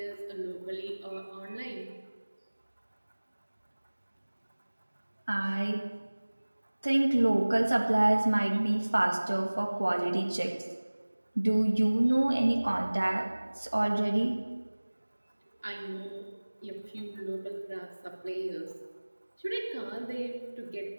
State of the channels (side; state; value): both; inverted; correlation -1.00